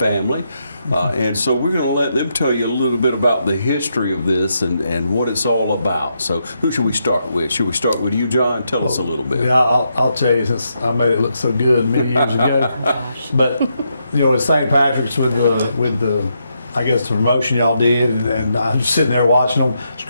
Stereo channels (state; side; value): inverted; both; correlation -0.81